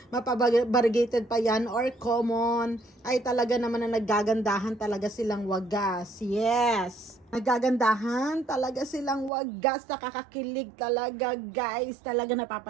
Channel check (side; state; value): left; drops out; at 9.3 s